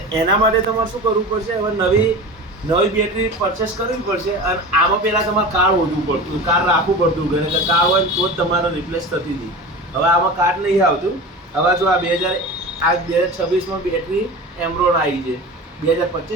એના માટે તમારે શું કરવું પડશે? હવે નવી બેટરી પરચેસ કરવી પડશે. અને આમાં પહેલાં તમારે કાર્ડ હોવું પડતું, કાર્ડ રાખવું પડતું ઘરે. એટલે કાર્ડ હોય તો જ તમારે રિપ્લેસ થતી હતી. હવે આમાં કાર્ડ નહીં આવતું. હવે જો આ 2026માં બેટરી એમરોન આવી છે,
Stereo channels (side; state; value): both; normal; correlation 0.32